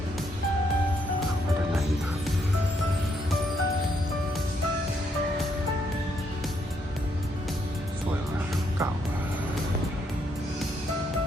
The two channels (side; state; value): both; normal; correlation 0.74